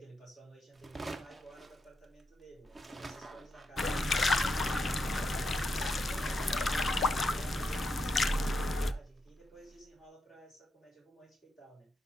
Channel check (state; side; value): normal; both; correlation 0.83